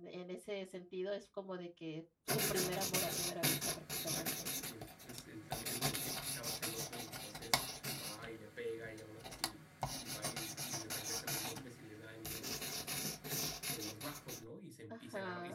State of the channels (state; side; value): identical; both; correlation 1.00